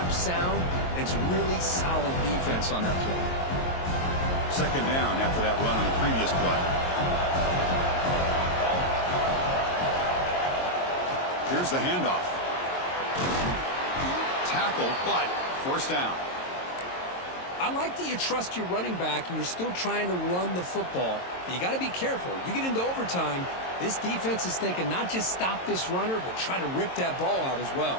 sound. It's really solid defense on that play. 2nd down after that run on the previous play. Here's the handoff. Tackle, but first down. I like that you trust your running back and you're still trying to run the football. But you got to be careful. You get into overtime, this defense is thinking not just stop this runner, but try to rip that ball out as well.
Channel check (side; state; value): right; late; 22 ms